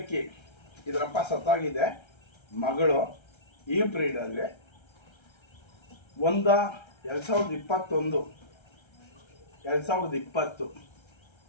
ಇದರಪ್ಪ ಸತ್ತಾಗಿದೆ, ಮಗಳು ಈ ಬ್ರೀಡಲ್ಲಿ 2020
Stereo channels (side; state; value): right; late; 1.3 ms